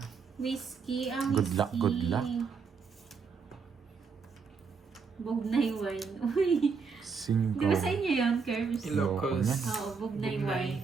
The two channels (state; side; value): quieter; left; 5.3 dB